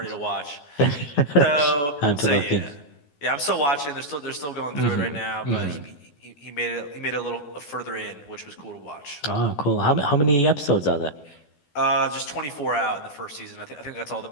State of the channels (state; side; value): late; right; 14 ms